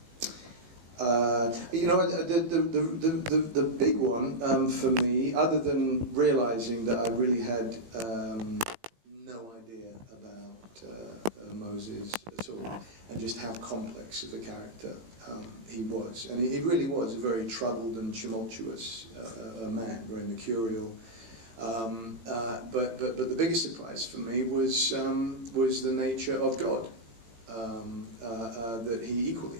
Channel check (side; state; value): left; late; 18 ms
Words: You know, the big one for me, other than realizing that I really had no idea about Moses at all, and just how complex of a character he was. And he really was a very troubled and tumultuous man, very mercurial. But the biggest surprise for me was the nature of God, that he equally